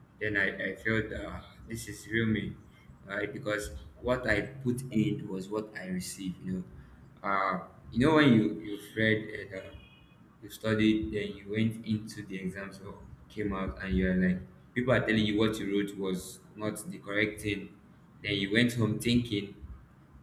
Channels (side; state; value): both; identical; correlation 1.00